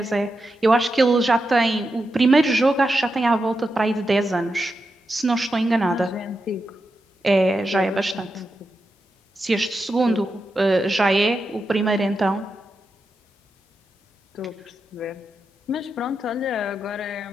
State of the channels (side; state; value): both; normal; correlation 0.87